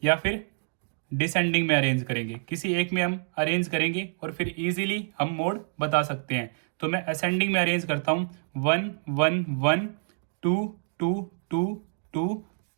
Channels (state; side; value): silent; left; digital silence